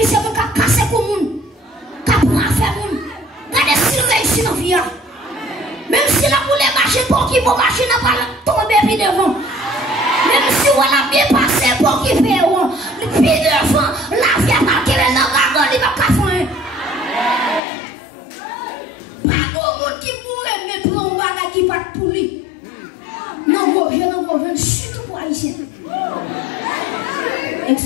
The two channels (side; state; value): right; drops out; at 17.6 s